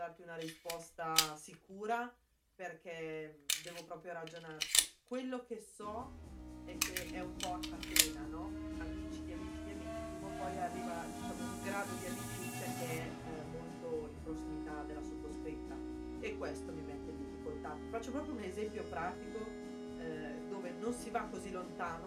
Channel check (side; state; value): both; identical; correlation 1.00